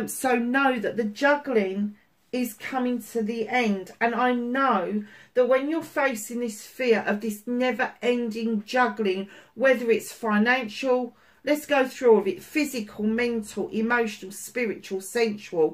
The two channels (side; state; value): both; identical; correlation 1.00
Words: know that the juggling is coming to the end. And I know that when you're facing this fear of this never-ending juggling, whether it's financial, let's go through all of it, physical, mental, emotional, spiritual,